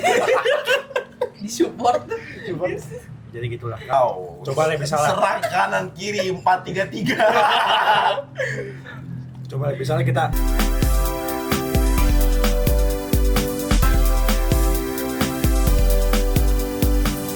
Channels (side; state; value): both; identical; correlation 1.00